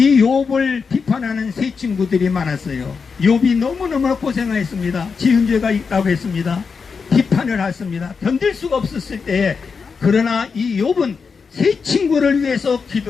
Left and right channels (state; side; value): quieter; right; 5.4 dB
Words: 욥을 비판하는 세 친구들이 많았어요. 욥이 너무너무 고생했습니다. 지은 죄가 있다고 했습니다. 비판을 했습니다. 견딜 수가 없었을 때에 그러나 이 욥은 세 친구를 위해서